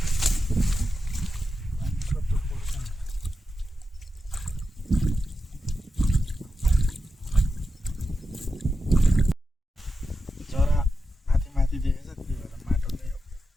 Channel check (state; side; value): normal; both; correlation 0.90